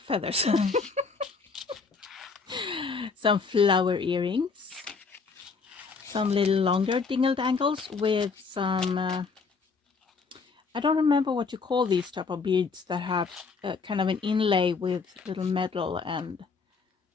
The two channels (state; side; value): quieter; right; 4.8 dB